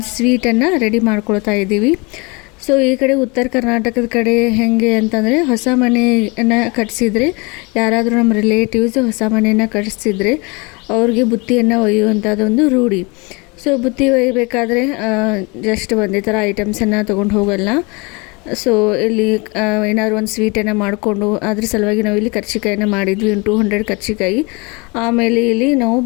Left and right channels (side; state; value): right; quieter; 28.1 dB